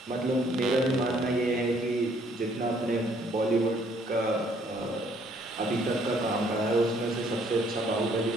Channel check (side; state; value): both; normal; correlation 0.64